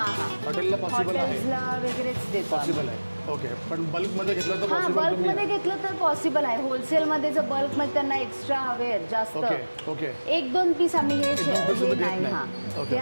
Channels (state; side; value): inverted; both; correlation -1.00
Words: हां, हॉटेलला पॉसिबल आहे. हॉटेल्सला वगैरेच देतो आम्ही. पॉसिबल आहे. ओके, पण बल्कमध्ये घेतलं तर हां, पॉसिबल बल्कमध्ये घेतलं तर पॉसिबल आहे. होलसेलमध्ये जर बल्कमध्ये त्यांना एक्स्ट्रा हवे आहेत जास्त, ओके ओके. एक दोन पीस आम्ही हे एक दोन piece हे देत नाही. नाही. हां, ओके.